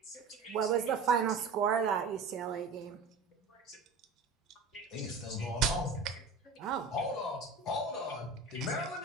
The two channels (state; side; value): quieter; left; 4.2 dB